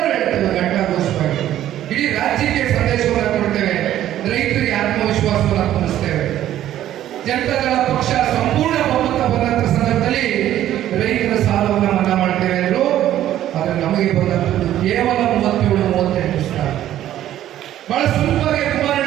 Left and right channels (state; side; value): quieter; left; 12.4 dB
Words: ಹೇಳ್ತೇವೆ ಘಂಟಾಘೋಷವಾಗಿ, ಇಡೀ ರಾಜ್ಯಕ್ಕೆ ಸಂದೇಶವನ್ನು ಕೊಡ್ತೇವೆ, ರೈತರಿಗೆ ಆತ್ಮವಿಶ್ವಾಸವನ್ನು ತುಂಬಿಸ್ತೇವೆ. ಜನತಾದಳ ಪಕ್ಷ ಸಂಪೂರ್ಣ ಬಹುಮತ ಬಂದಂತ ಸಂದರ್ಭದಲ್ಲಿ ರೈತರ ಸಾಲವನ್ನು ಮನ್ನಾ ಮಾಡ್ತೇವೆ ಅಂದರು. ಆದರೆ ನಮಗೆ ಬಂದಂಥದ್ದು ಕೇವಲ 37-38 ಸಾವಿರ. ಬಹಳ ಸುಲಭವಾಗಿ